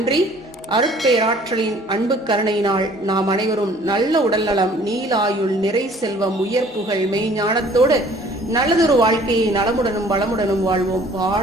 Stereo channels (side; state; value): both; normal; correlation 0.54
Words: அருட்பேராற்றலின் அன்பு கருணையினால் நாம் அனைவரும் நல்ல உடல்நலம், நீலாயுள், நிறை செல்வம், உயர் புகழ், மெய்ஞானத்தோடு நல்லதொரு வாழ்க்கையை நலமுடனும் வளமுடனும் வாழ்வோம்.